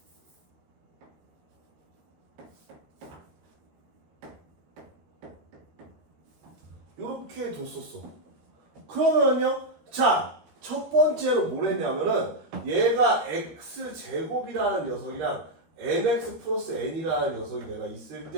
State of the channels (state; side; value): late; left; 13 ms